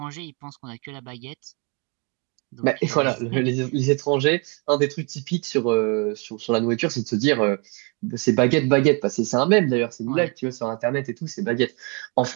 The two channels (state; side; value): quieter; left; 33.4 dB